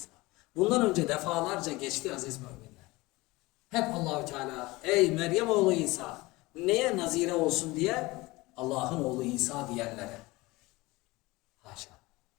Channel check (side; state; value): right; quieter; 21.6 dB